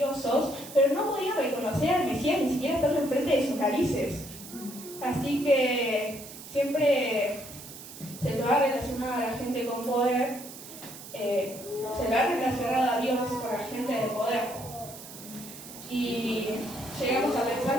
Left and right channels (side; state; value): right; noise; hiss, 14 dB below the sound